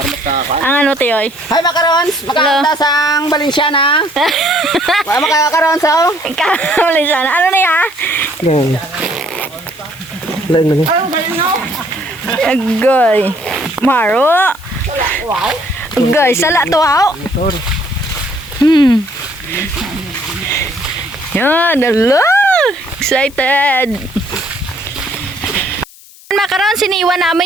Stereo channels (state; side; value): noise; left; hiss, 22 dB below the sound